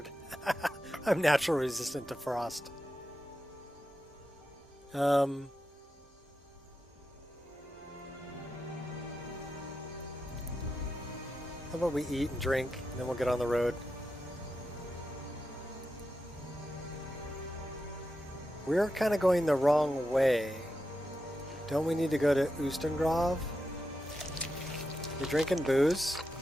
I'm naturally resistant to frost. How about we eat and drink, and then we'll get on the road. We're kind of going the wrong way. Don't we need to go to Ustengrav? You drinking booze?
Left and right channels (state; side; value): normal; both; correlation 0.89